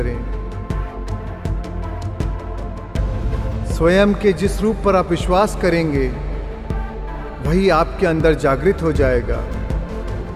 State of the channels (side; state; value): both; identical; correlation 1.00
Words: स्वयं के जिस रूप पर आप विश्वास करेंगे वही आपके अंदर जागृत हो जाएगा।